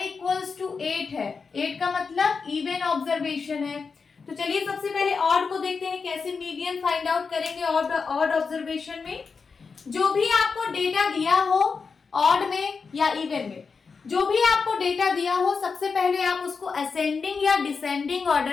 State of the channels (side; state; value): right; quieter; 5.1 dB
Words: इक्वल्स टू 8 है। 8 का मतलब इवन ऑब्जर्वेशन है। तो चलिए सबसे पहले ऑड को देखते हैं, कैसे मीडियन फाइंड आउट करेंगे ऑड ऑब्जर्वेशन में। जो भी आपको डेटा दिया हो ऑड में या इवन में, जो भी आपको डेटा दिया हो, सबसे पहले आप उसको असेंडिंग या डिसेंडिंग